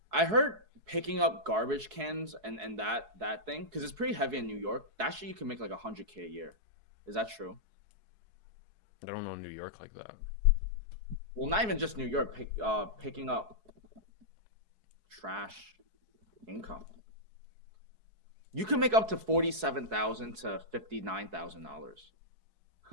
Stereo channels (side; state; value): left; late; 4.7 ms